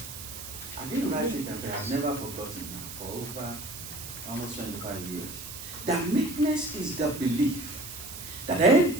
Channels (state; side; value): noise; right; hiss, 10 dB below the sound